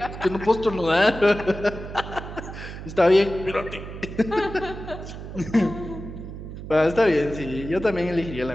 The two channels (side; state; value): right; noise; hum, 10 dB below the sound